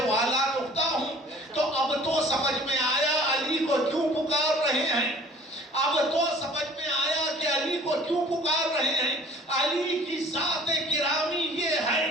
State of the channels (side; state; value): both; normal; correlation 0.50